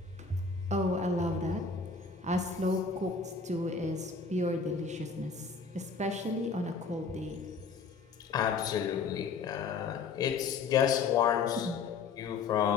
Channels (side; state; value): right; quieter; 5.0 dB